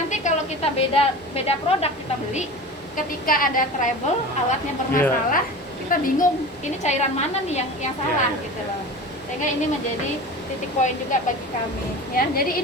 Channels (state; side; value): normal; both; correlation 0.33